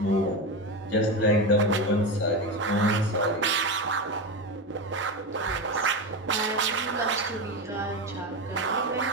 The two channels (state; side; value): normal; both; correlation 0.18